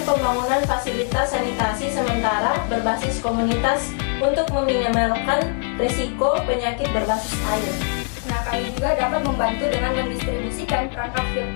pembangunan fasilitas sanitasi sementara berbasis komunitas untuk meminimalkan risiko penyakit berbasis air. Nah, kami juga dapat membantu dengan mendistribusikan perangkat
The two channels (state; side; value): quieter; right; 39.3 dB